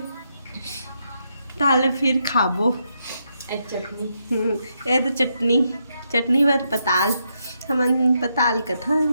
ताले फिर खाबो। चटनी ये तो चटनी चटनी बर पताल हमन पताल कथा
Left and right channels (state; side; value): inverted; both; correlation -0.80